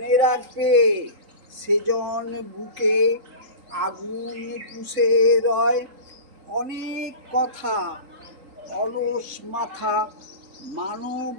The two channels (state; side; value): late; left; 3.8 ms